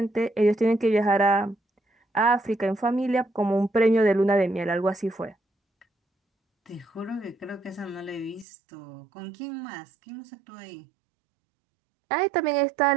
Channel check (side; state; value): left; drops out; at 8.5 s